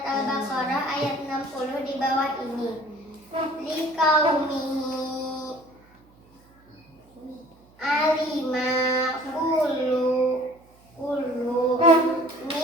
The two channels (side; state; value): right; noise; hum, 30 dB below the sound